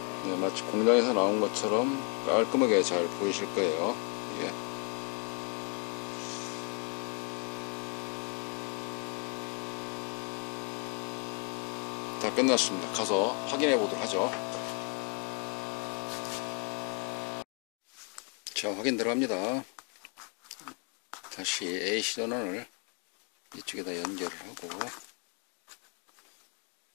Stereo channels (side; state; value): right; quieter; 37.8 dB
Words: 마치 공장에서 나온 것처럼 깔끔하게 잘 보이실 거예요. 이게 다 끝났습니다. 가서 확인해 보도록 하죠. 자, 확인 들어갑니다. 다시 AC 전원을 이쪽에다 연결을 하고